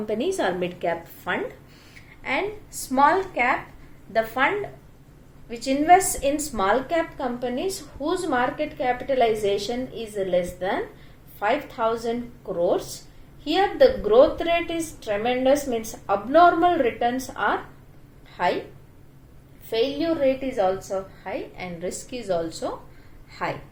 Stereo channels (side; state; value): both; identical; correlation 1.00